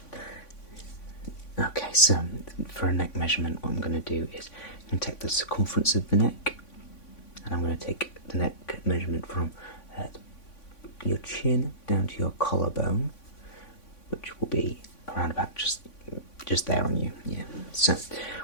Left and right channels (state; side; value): late; right; 3.5 ms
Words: Okay, so for a neck measurement, what I'm going to do is I'm going to take the circumference of the neck, and I'm going to take the neck measurement from your chin down to your collarbone, which will be around about just there on you. Yeah. So